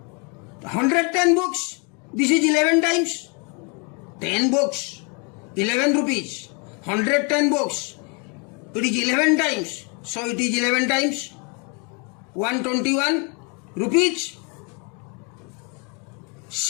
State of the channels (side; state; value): right; quieter; 34.1 dB